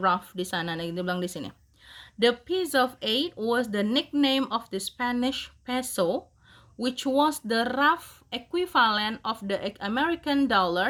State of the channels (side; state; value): both; identical; correlation 1.00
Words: di sana? Nah, dibilang di sini. The piece of 8 was the nickname of the Spanish peso, which was the rough equivalent of the American